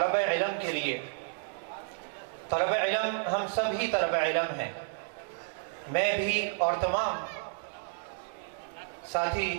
علم کے لیے۔ طلب علم ہم سب ہی طلب علم ہیں، میں بھی اور تمام ساتھی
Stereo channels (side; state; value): left; silent; digital silence